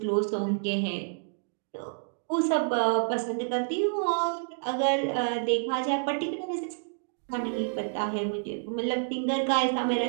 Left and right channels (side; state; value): left; silent; digital silence